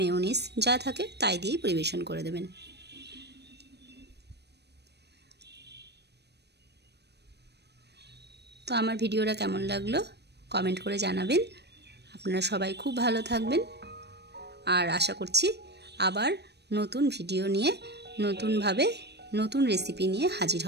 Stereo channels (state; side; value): late; left; 0.49 ms